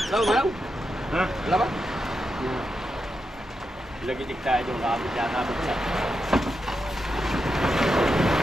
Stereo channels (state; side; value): normal; both; correlation 0.86